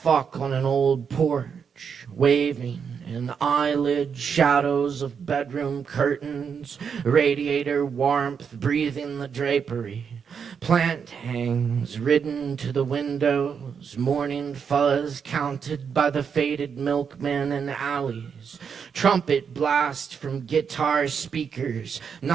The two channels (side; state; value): left; quieter; 6.7 dB